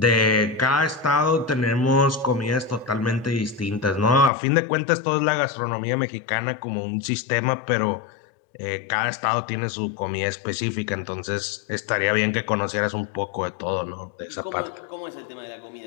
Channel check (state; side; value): drops out; right; at 4.3 s